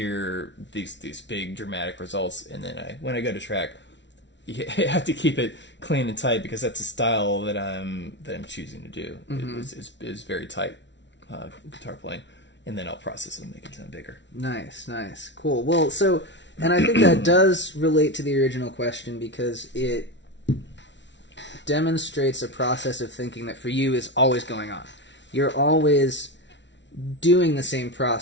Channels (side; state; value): right; late; 0.52 ms